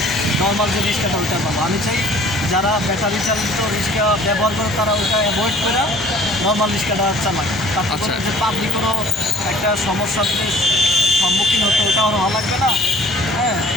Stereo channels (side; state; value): both; normal; correlation 0.51